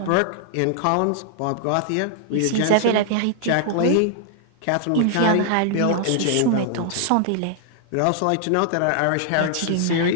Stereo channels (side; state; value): both; different; correlation -0.01